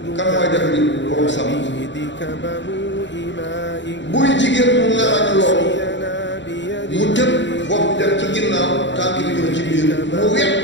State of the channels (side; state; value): right; late; 0.53 ms